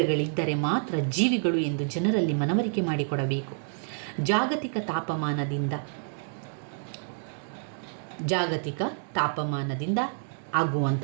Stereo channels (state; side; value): silent; left; digital silence